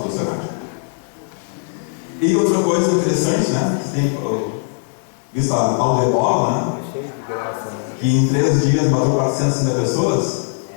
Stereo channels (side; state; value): right; silent; 66 dB below the other